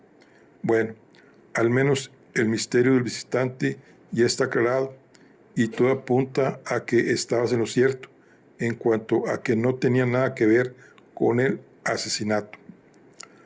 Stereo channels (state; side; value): identical; both; correlation 1.00